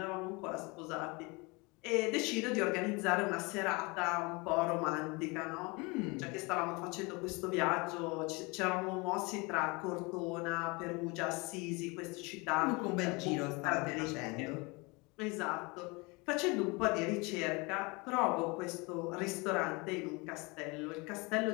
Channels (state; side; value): quieter; right; 27.2 dB